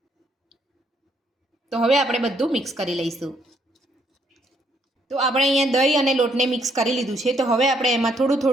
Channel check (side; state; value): both; normal; correlation 0.70